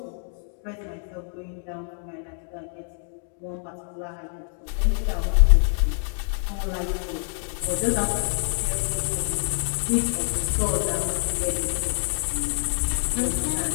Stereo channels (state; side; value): silent; right; 57 dB below the other